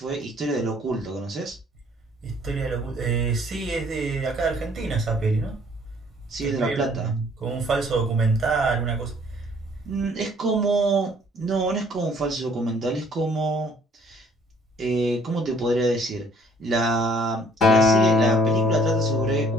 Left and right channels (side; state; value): both; normal; correlation 0.60